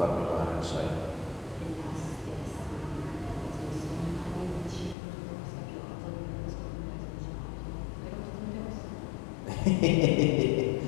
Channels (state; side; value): drops out; right; at 5.0 s